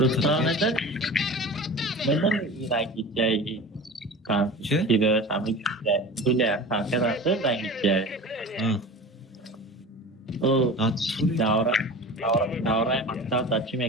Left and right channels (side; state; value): both; normal; correlation 0.35